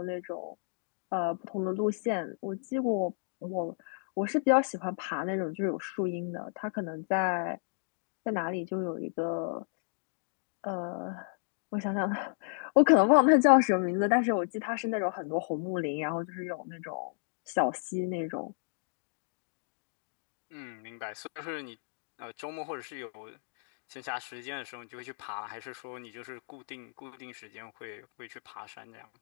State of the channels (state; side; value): silent; right; digital silence